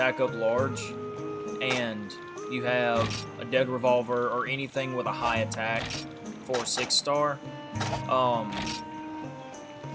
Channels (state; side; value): identical; both; correlation 1.00